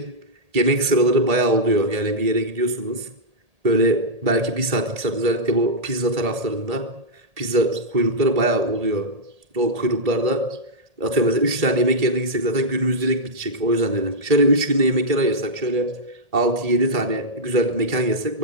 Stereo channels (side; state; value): left; late; 1.8 ms